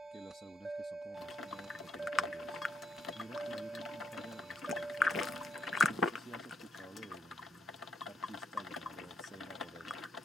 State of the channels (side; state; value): both; normal; correlation 0.79